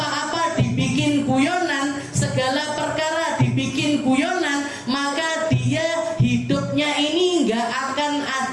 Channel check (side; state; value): both; identical; correlation 1.00